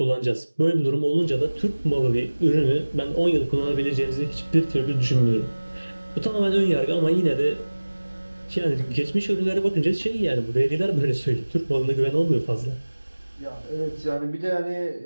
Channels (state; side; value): inverted; both; correlation -1.00